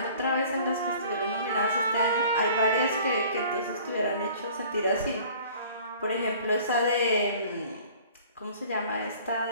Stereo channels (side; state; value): both; inverted; correlation -0.49